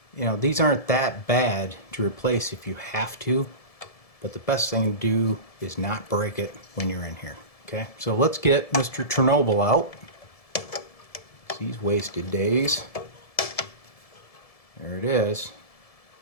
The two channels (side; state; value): right; late; 1.7 ms